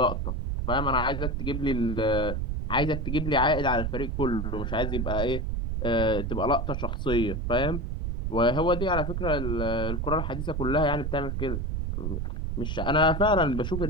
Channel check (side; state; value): right; noise; rumble, 2 dB below the sound